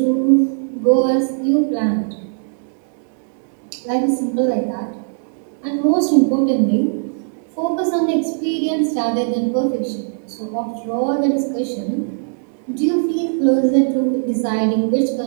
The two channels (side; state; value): left; silent; digital silence